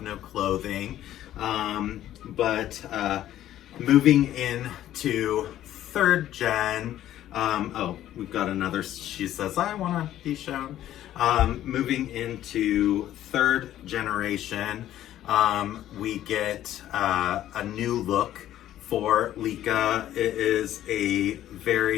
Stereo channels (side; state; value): right; quieter; 12.6 dB